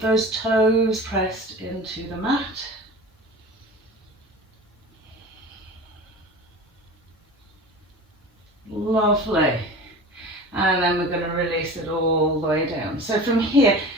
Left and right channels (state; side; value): normal; both; correlation 0.36